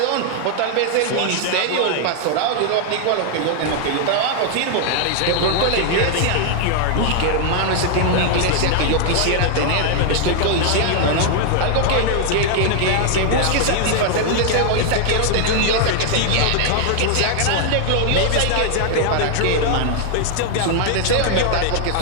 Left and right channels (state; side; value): different; both; correlation 0.00